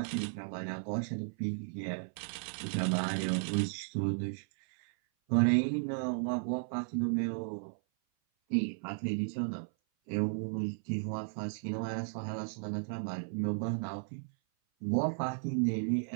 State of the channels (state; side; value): silent; left; 55 dB below the other